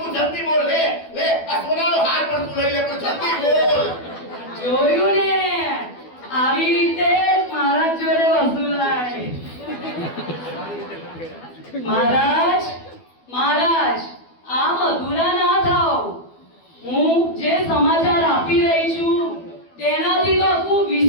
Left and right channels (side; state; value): right; late; 12 ms